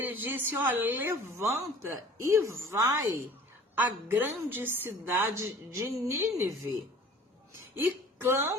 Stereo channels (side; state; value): both; normal; correlation 0.47